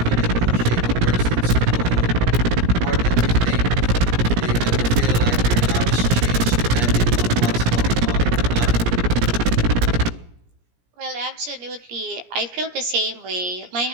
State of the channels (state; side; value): late; left; 17 ms